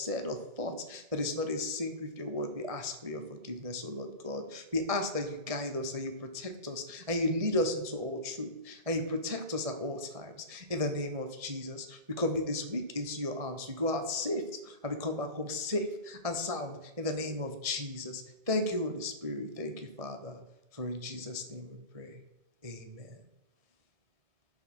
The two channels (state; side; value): late; left; 1.7 ms